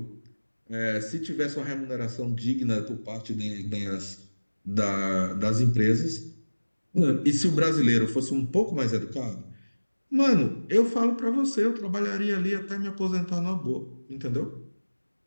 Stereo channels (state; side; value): inverted; both; correlation -1.00